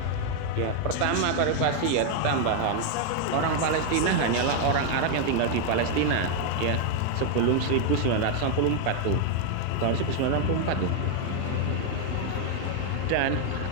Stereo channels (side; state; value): both; different; correlation 0.00